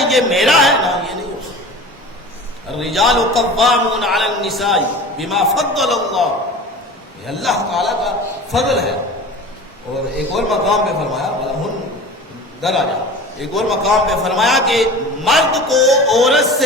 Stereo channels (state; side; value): normal; both; correlation 0.36